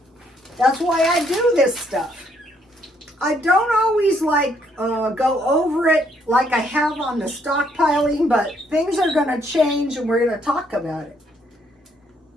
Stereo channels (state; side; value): normal; both; correlation 0.70